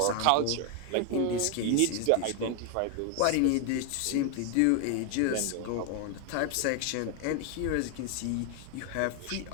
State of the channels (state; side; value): different; both; correlation 0.01